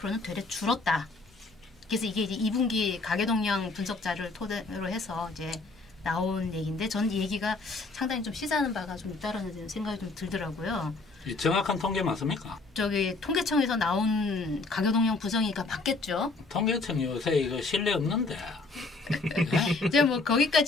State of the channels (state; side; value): quieter; right; 3.6 dB